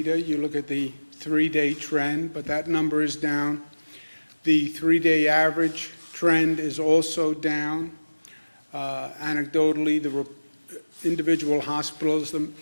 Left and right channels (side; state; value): both; inverted; correlation -1.00